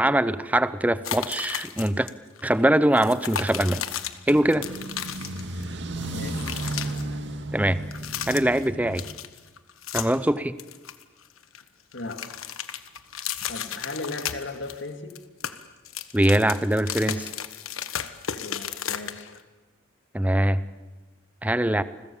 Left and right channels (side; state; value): both; normal; correlation 0.79